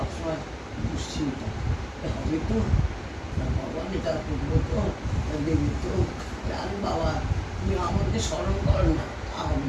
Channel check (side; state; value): both; identical; correlation 1.00